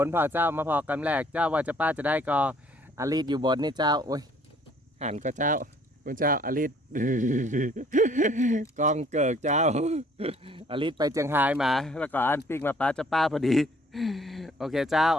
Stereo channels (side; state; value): both; normal; correlation 0.59